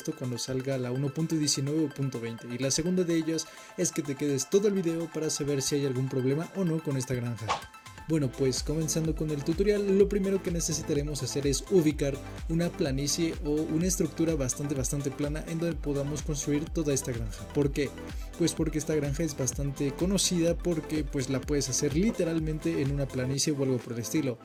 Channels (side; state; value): both; identical; correlation 1.00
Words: cuando salga la 1.19 o 1.20, y la segunda de ellas es que te quedes todo el video para saber si hay algún problema o no con esta granja. Bueno, pues comenzando con el tutorial, lo primero que necesitaremos hacer es ubicar una planicie o una estructura bastante plana en donde podamos construir toda esta granja. ¿Por qué? Pues porque esta granja es bastante conocida porque pues la puedes hacer literalmente en una planicie o algo por el estilo.